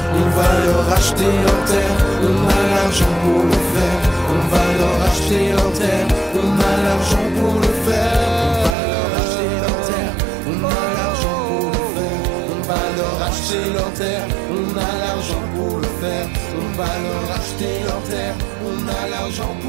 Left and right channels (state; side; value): drops out; left; at 8.8 s